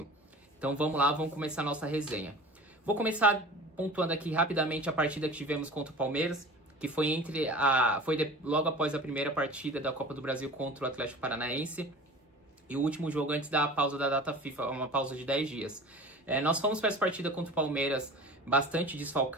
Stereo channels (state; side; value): normal; both; correlation 0.39